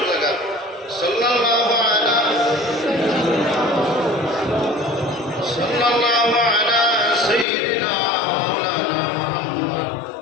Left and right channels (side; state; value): right; drops out; at 7.5 s